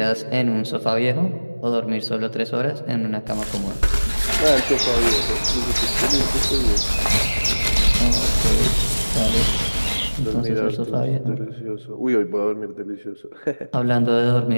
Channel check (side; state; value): both; inverted; correlation -1.00